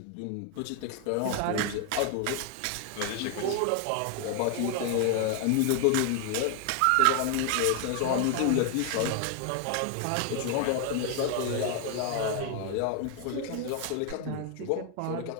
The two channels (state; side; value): different; both; correlation 0.00